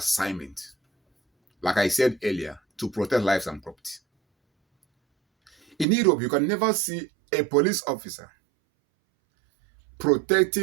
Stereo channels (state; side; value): drops out; left; at 5.9 s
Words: like I said earlier, to protect lives and property. In Europe, you can never see a police officer